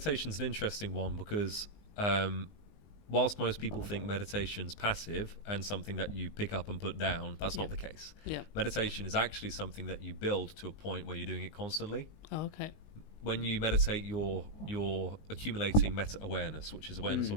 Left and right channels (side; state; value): right; late; 19 ms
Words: an interesting one because whilst most people think meditation's passive and something that you pick up and put down, that's not the case. Meditation is actually something that you build to a point where you're doing it constantly. When you meditate, you're accumulating meta-awareness, which is awareness